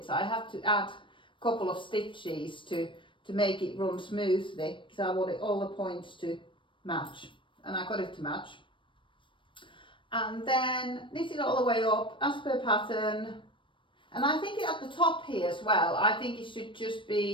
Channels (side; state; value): right; late; 0.24 ms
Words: I have to add a couple of stitches to make it run smoothly, because I wanted all the points to match, and I got it to match. And then knit it all the way up as per pattern. And I think at the top here as well, I think it should just